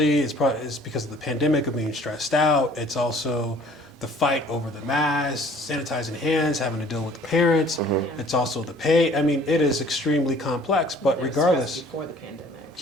it's because of the pandemic of being stressed out. It's also the fight over the masks, sanitizing hands, having to deal with the parents. It's also the pay. I mean, it is extremely complex. But They're regardless. stressed before the pandemic.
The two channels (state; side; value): normal; both; correlation 0.54